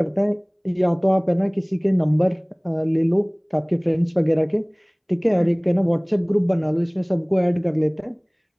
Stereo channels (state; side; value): identical; both; correlation 1.00